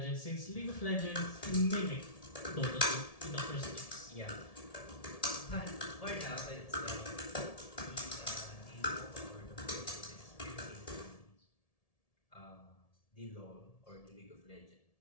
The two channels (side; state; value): right; late; 1.7 ms